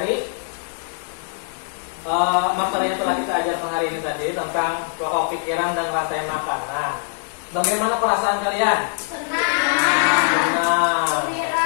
materi yang telah kita ajarkan hari ini tadi tentang pokok pikiran dan rantai makanan, bagaimana perasaan kalian? Senang,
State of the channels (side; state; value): right; silent; 64 dB below the other